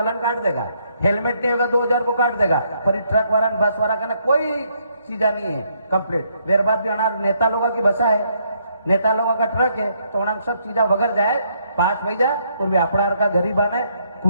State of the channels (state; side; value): inverted; both; correlation -0.72